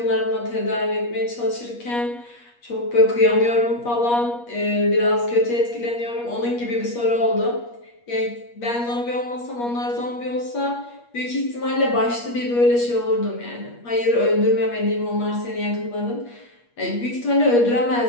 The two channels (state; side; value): late; right; 8.4 ms